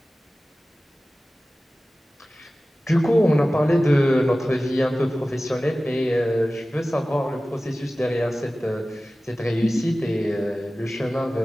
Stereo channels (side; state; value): both; normal; correlation 0.96